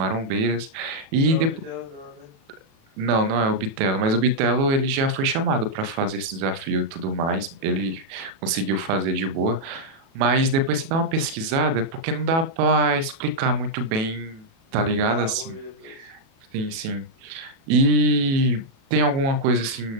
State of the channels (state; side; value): late; left; 37 ms